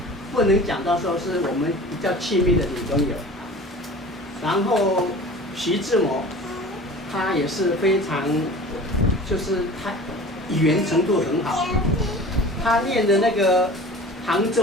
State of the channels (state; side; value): normal; both; correlation 0.40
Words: 不能讲到说是我们比较亲密的女朋友。然后徐志摩，他也是非常，就是他语言程度很好，他念的那个杭